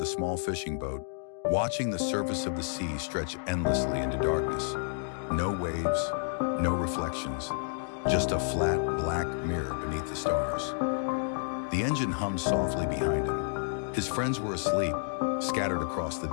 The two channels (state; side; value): silent; right; digital silence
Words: small fishing boat, watching the surface of the sea stretch endlessly into darkness. No waves, no reflections, just a flat black mirror beneath the stars. The engine hummed softly behind him. His friends were asleep, scattered across the